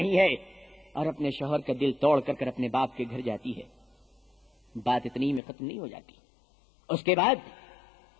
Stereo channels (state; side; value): drops out; right; at 5.4 s